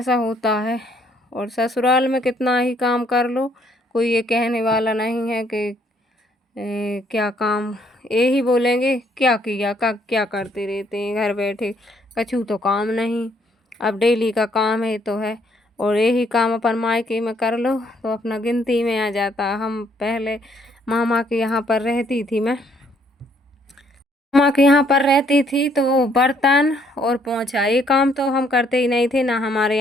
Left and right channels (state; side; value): normal; both; correlation 0.67